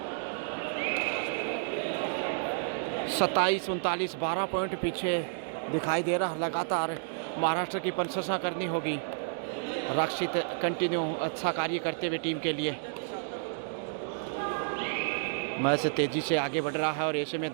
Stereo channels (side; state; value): left; silent; digital silence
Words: 27-39, 12 पॉइंट पीछे दिखाई दे रहा। लगातार महाराष्ट्र की प्रशंसा करनी होगी। रक्षित कंटिन्यू अच्छा कार्य करते हुए टीम के लिए। मैच तेजी से आगे बढ़ रहा है और ऐसे में